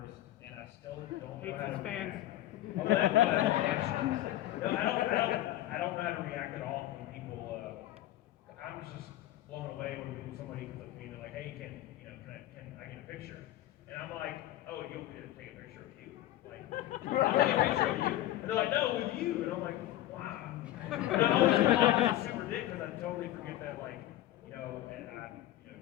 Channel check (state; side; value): quieter; right; 14.3 dB